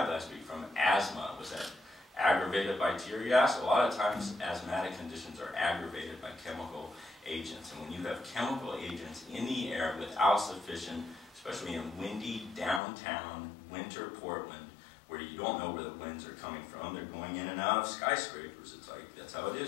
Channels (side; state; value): right; drops out; at 12.8 s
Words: last week from asthma. Was that aggravated by tear gas? A lot of times asthmatic conditions are aggravated by chemical agents. And when you have chemical agents in the air without sufficient, especially in windy downtown winter Portland, where you don't know where the winds are coming from, they're going in and out of skyscrapers. It's like, that's how it